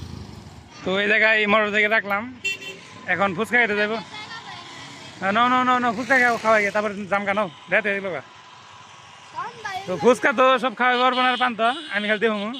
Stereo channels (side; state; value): both; identical; correlation 1.00